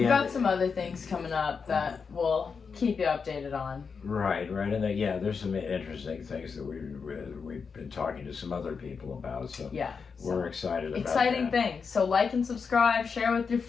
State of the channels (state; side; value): quieter; right; 5.6 dB